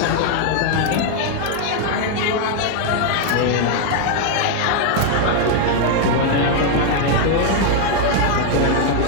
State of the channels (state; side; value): different; both; correlation 0.00